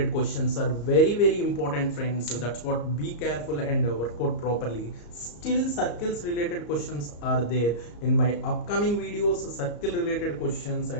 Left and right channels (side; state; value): right; late; 34 ms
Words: questions are very important, friends. So that's what, be careful and work out properly. Still circles related questions are there in my upcoming videos. Circle related questions